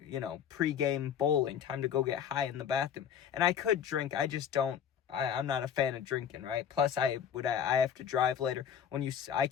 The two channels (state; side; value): quieter; right; 8.4 dB